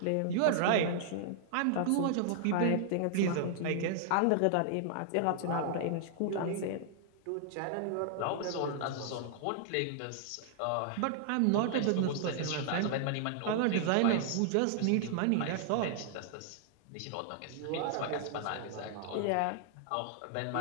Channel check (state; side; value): different; both; correlation -0.01